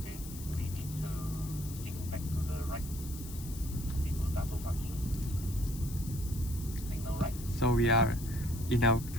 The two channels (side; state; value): left; noise; hiss, 14 dB below the sound